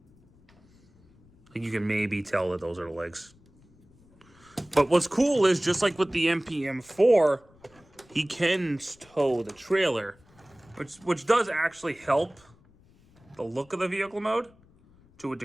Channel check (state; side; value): noise; left; rumble, 29 dB below the sound